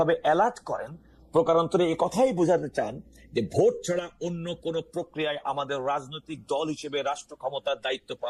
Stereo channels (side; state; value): both; identical; correlation 1.00